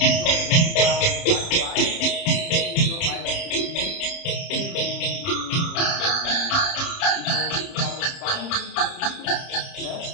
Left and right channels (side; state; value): right; late; 30 ms